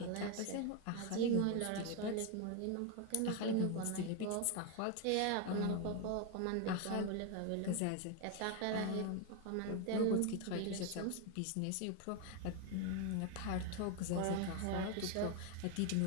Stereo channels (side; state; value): both; different; correlation 0.01